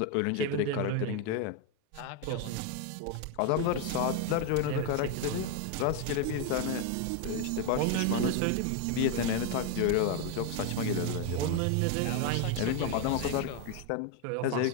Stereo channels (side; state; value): both; different; correlation 0.01